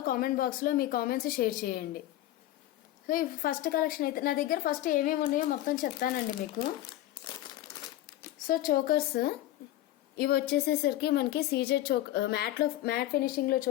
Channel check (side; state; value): right; quieter; 14.6 dB